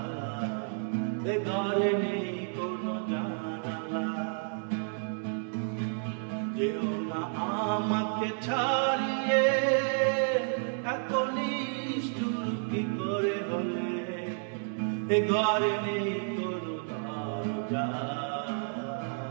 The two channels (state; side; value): silent; left; 57 dB below the other